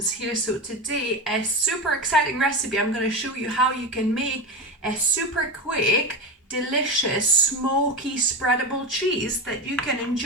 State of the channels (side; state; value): both; normal; correlation 0.18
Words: here. So today a super exciting recipe. I'm going to show you how you can make a super quick, delicious, smoky spreadable cheese that you can